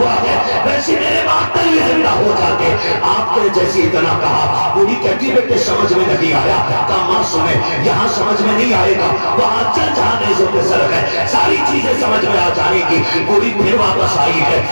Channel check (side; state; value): both; inverted; correlation -1.00